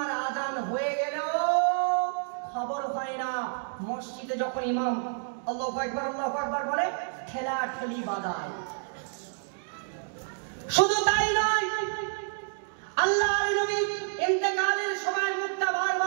আজান হয়ে গেলেও খবর হয় না। মসজিদে যখন ইমাম আল্লাহু আকবার বলে, ঠেলা ঠেলি বাদায়। শুধু তাই নয়, আল্লাহর নবী ইন্তেকালের সময় মুখটা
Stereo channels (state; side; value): silent; left; digital silence